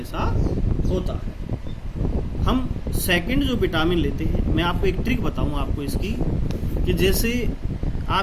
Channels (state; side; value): identical; both; correlation 1.00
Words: होता है। हम सेकंड जो विटामिन लेते हैं, मैं आपको एक ट्रिक बताऊंगा आपको इसकी, कि जैसे